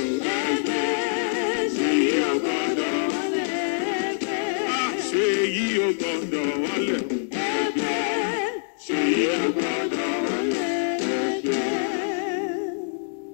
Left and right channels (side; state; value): right; silent; digital silence